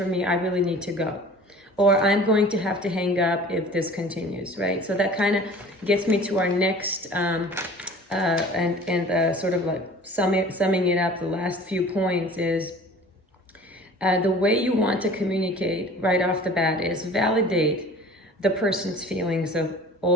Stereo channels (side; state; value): both; normal; correlation 0.45